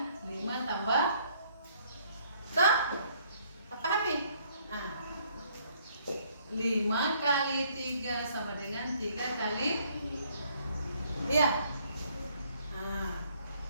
5 tambah pahami? 5 kali 3 sama dengan 3 kali, iya.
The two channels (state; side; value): inverted; both; correlation -0.65